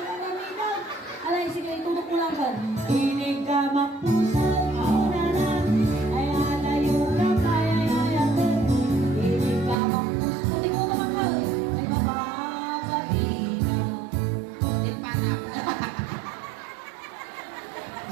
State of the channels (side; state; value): left; drops out; at 9.8 s